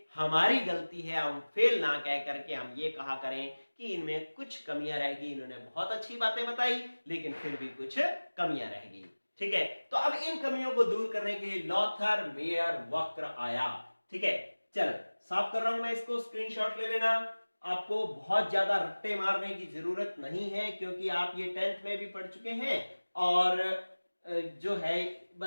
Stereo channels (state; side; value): inverted; both; correlation -1.00